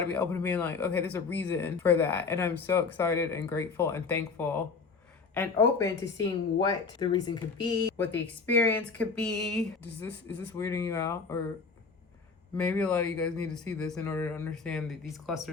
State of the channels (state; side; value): quieter; right; 4.8 dB